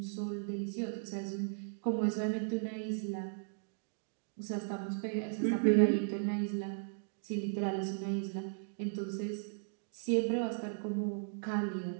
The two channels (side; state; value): left; silent; digital silence